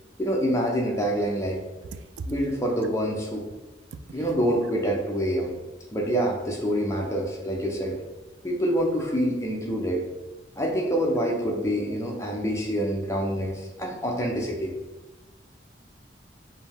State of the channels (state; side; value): normal; both; correlation 0.55